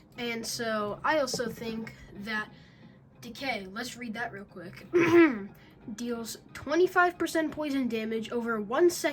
And so I also think that Decay, let's read that real quick, deals 25% poison damage over 1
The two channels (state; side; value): identical; both; correlation 1.00